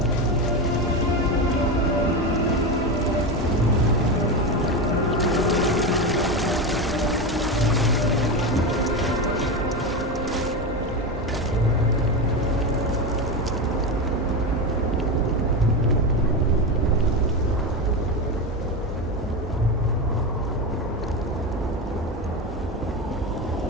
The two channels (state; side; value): normal; both; correlation 0.17